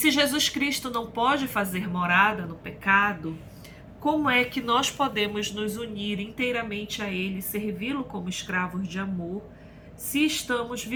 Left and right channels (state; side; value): identical; both; correlation 1.00